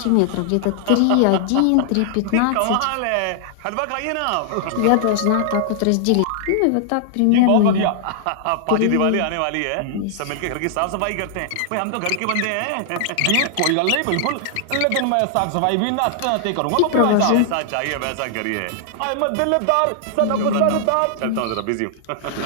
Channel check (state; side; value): different; both; correlation -0.01